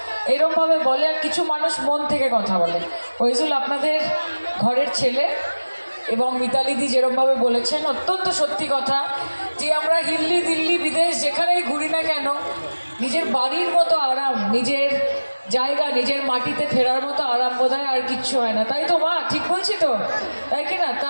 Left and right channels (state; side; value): inverted; both; correlation -1.00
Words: এরকমভাবে বলে, আর কিছু মানুষ মন থেকে কথা বলে। ওইজুল আপনাদের ঘরের ছেলে, এবং মিতালিদি যেরকমভাবে বলেছেন অত্যন্ত সত্যি কথা, যে আমরা হিল্লি দিল্লি বিদেশ যেখানেই ঘুরি না কেন, নিজের বাড়ির মতো আরাম, নিজের জায়গা, নিজের মাটিতে ফেরার মতো আরাম বোধহয় আর কিচ্ছু হয় না। তাই তো মা, ঠিক বলছি তো, তাই কি না?